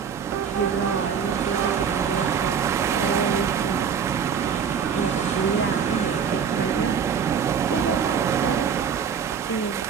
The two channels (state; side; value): quieter; left; 7.0 dB